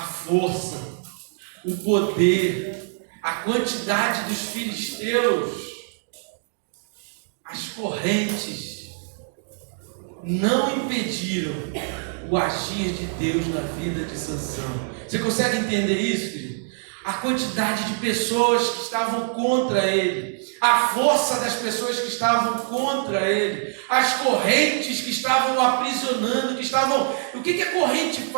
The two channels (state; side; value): silent; left; digital silence